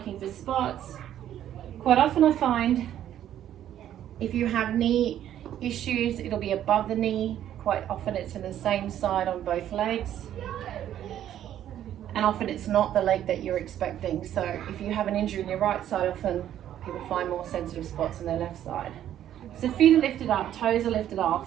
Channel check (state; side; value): quieter; left; 11.2 dB